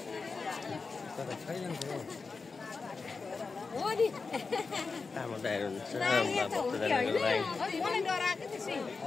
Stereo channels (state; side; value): quieter; right; 4.5 dB